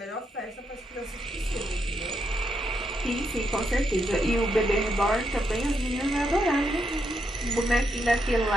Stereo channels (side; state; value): both; normal; correlation 0.80